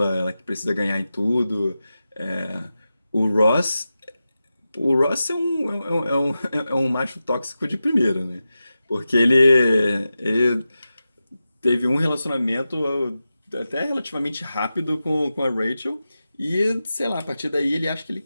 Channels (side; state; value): both; inverted; correlation -0.92